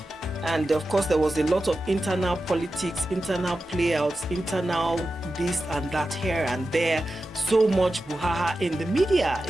And of course there was a lot of internal politics, internal playouts, internal this and that here and there. So much brouhaha in the media,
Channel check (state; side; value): normal; both; correlation 0.92